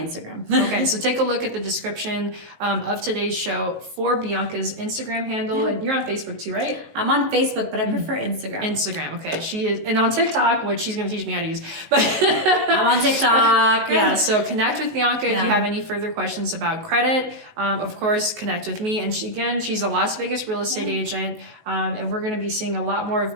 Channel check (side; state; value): left; late; 19 ms